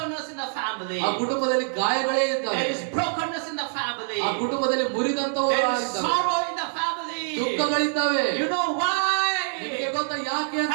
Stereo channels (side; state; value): left; silent; digital silence